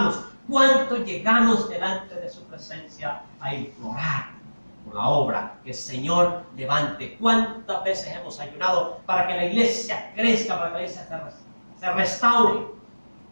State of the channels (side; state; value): both; inverted; correlation -1.00